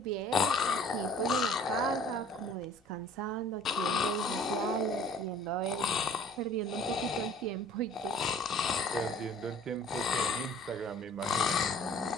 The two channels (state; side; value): normal; both; correlation 0.51